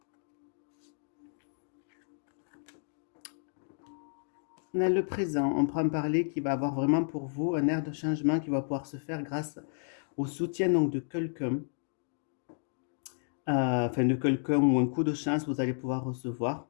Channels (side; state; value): right; silent; digital silence